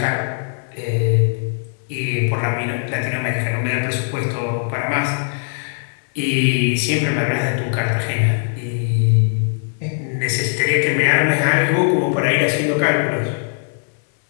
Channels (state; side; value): silent; right; digital silence